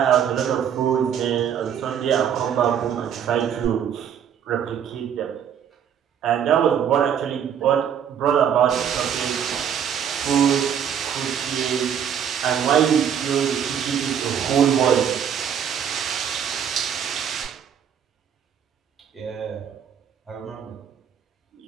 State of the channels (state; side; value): quieter; left; 8.5 dB